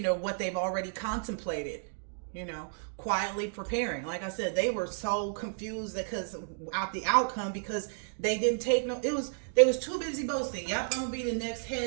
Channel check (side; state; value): left; silent; digital silence